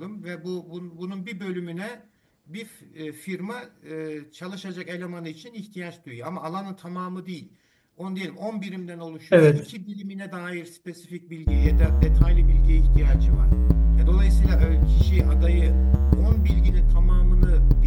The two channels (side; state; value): both; identical; correlation 1.00